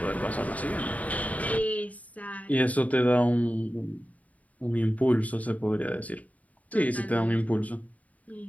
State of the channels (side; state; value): right; late; 0.071 ms